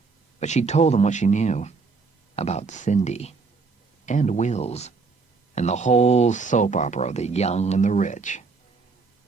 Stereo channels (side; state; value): left; quieter; 4.5 dB